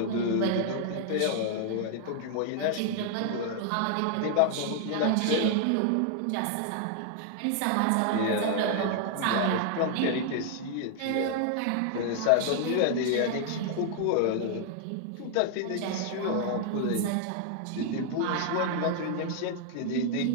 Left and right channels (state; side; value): different; both; correlation 0.00